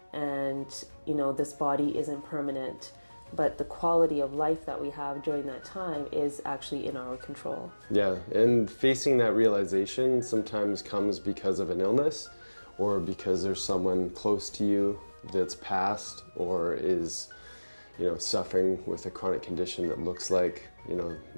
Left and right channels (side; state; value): both; inverted; correlation -1.00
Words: and, you know, this body isn't permanent, but the quality of life that we have during that time is actually in our control. Yeah, and facing that realization sometimes comes because of an illness or because there's someone close to you that's passed or is, you know, suffering with a chronic condition that looks like, you know,